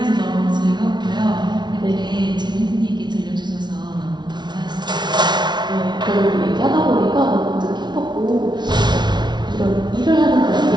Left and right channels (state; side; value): late; left; 0.21 ms